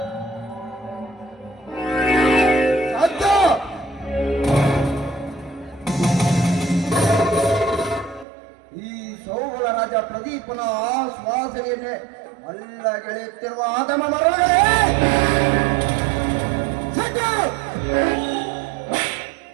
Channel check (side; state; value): left; drops out; at 8.2 s